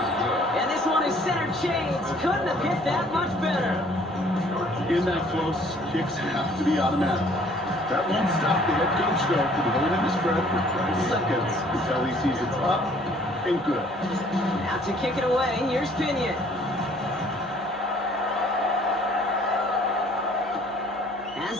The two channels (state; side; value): noise; left; hum, 30 dB below the sound